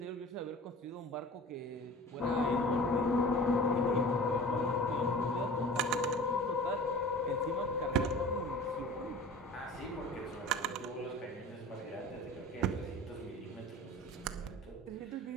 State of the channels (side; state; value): both; normal; correlation 0.40